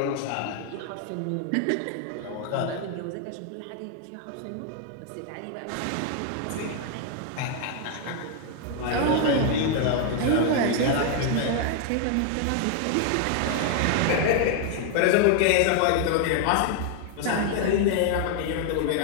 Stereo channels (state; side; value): different; both; correlation 0.00